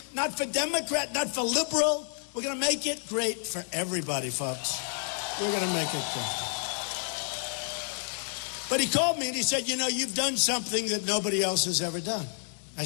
not for Democrat, not for liberal. We're going to make it great for everybody, folks. We're going to make it great. But he called me and he said, you know, you've done something that nobody else has ever done. I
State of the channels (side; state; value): right; silent; 55 dB below the other